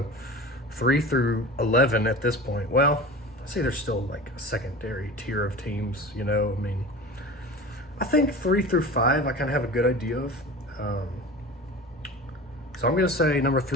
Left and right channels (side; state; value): both; normal; correlation 0.34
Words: 3 through 11 at this point, well, I'd say there's still like a secondary tier of teams, I mean, I think 3 through 5 I kind of have a good idea of. So I'm going to say number